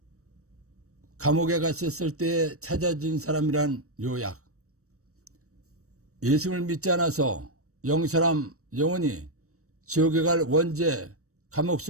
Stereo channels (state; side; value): late; left; 0.65 ms